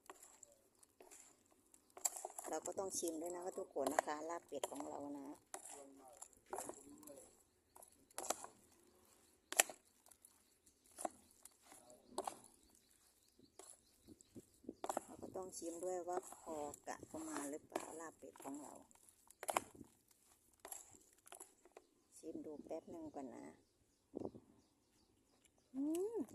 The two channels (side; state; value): both; identical; correlation 1.00